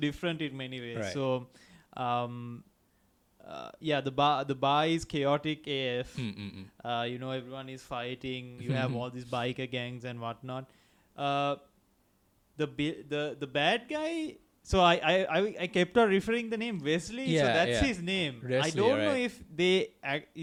in many ways. Right. So the bar is chaotic AF. Mm. Everyone is fighting. You have all these biker gangs and whatnot. The bad guy. So I kept on referring the name Wesley. So that's his name. Wesley, I don't know right. if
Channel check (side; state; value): both; identical; correlation 1.00